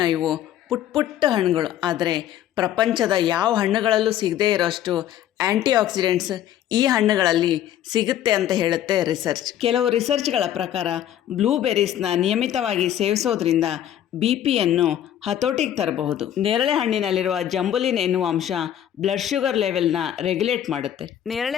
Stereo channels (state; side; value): quieter; right; 11.2 dB